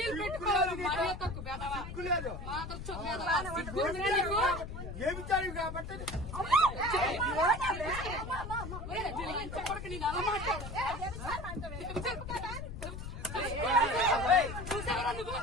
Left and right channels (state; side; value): noise; left; rumble, 8 dB below the sound